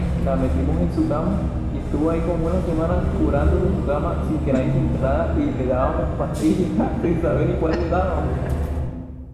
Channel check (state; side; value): identical; both; correlation 1.00